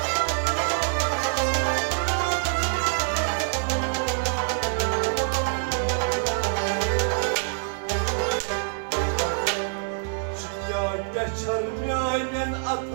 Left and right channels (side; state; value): left; silent; 61 dB below the other